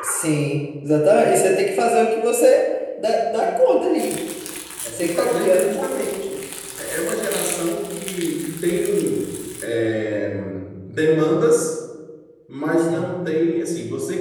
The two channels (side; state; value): both; identical; correlation 1.00